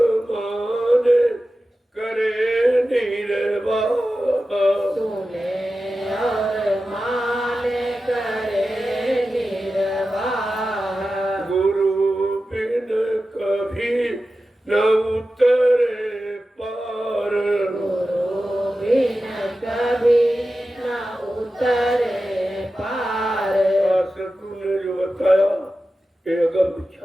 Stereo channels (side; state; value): both; normal; correlation 0.93